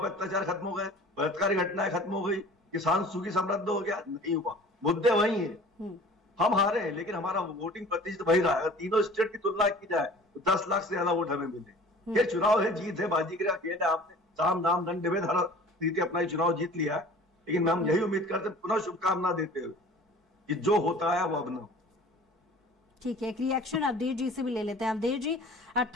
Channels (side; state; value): both; normal; correlation 0.45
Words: पर अत्याचार खत्म हो गए, बलात्कारी घटनाएं खत्म हो गई, किसान सुखी समृद्ध हो गया? नहीं हुआ। मुद्दे वही है। हम हारे हैं लेकिन हमारा वोटिंग प्रतिशत वही रहा। अगर तीनों स्टेट की तुलना की जाए तो 10 लाख से ज्यादा वोट हमें मिले। ये चुनाव है, जीत है, बाजी का खेल है। आपने साम दाम दंड भेद हर रीति अपना चुनाव जीत लिया है, लेकिन हम यही उम्मीद करते पुनः शुभकामना देते हुए कि जो होता है वो अब न हो। ठीक है, एक रिएक्शन अवधेश जी से भी ले लेते हैं। अवधेश जी,